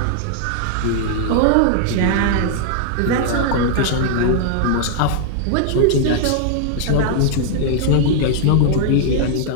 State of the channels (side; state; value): both; different; correlation -0.01